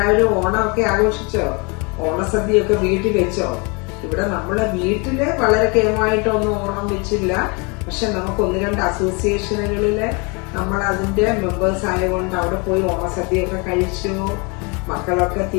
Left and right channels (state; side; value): quieter; right; 30.9 dB